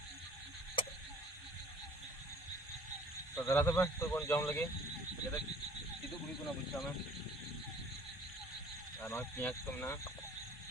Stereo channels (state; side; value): normal; both; correlation 0.52